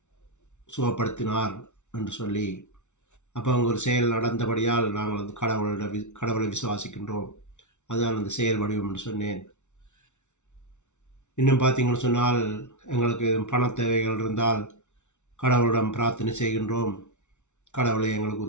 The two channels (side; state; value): right; late; 0.83 ms